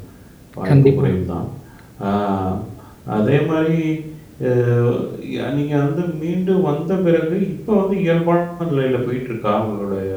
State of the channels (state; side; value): identical; both; correlation 1.00